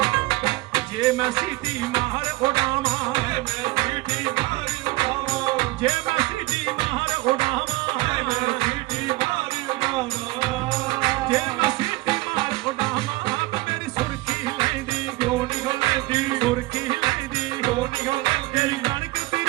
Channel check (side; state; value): left; quieter; 20.7 dB